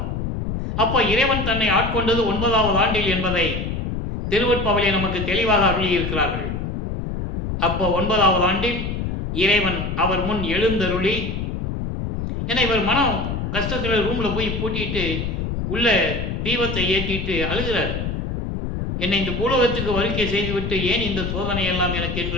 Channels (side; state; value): left; noise; rumble, 3 dB below the sound